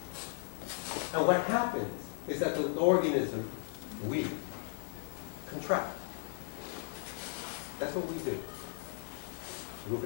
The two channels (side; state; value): right; silent; 54 dB below the other